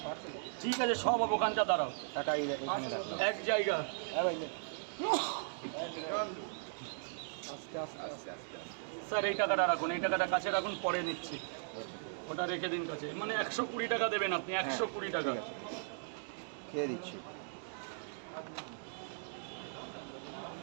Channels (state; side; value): silent; left; digital silence